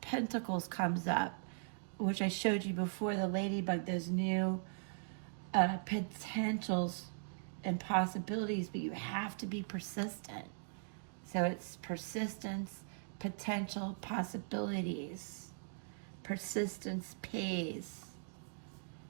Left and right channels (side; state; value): left; silent; digital silence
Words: Pentacles comes up, which I showed you before, the ladybug, those new potentials and possibilities, but you have to be persistent. So it's persistence, potential, possibilities. Persistence pays.